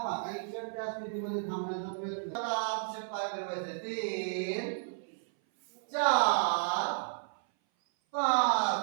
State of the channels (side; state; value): left; silent; 56 dB below the other